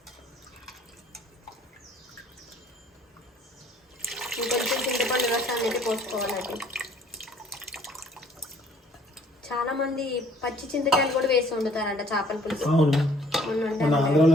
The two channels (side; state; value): both; normal; correlation 0.58